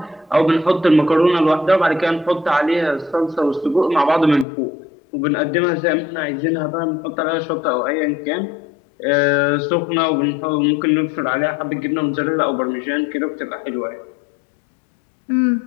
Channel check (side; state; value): right; drops out; at 4.5 s